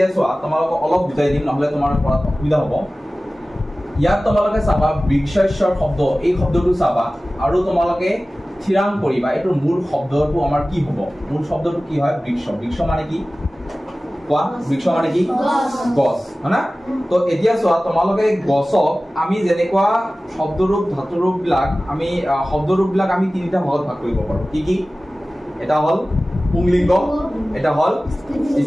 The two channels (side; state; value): both; normal; correlation 0.97